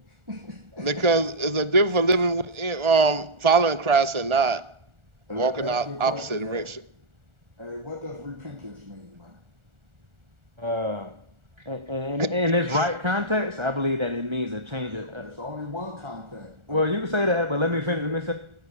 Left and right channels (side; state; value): left; late; 1.4 ms